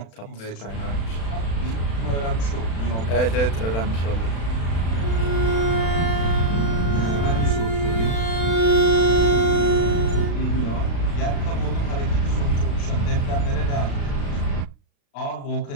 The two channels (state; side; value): late; right; 36 ms